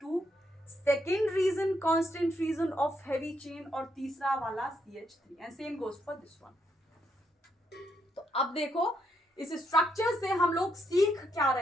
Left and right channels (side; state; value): both; normal; correlation 0.77